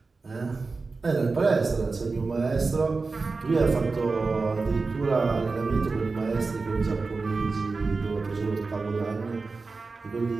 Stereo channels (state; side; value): quieter; left; 4.0 dB